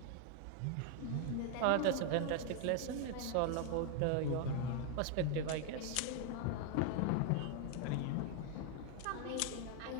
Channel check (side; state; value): both; different; correlation 0.00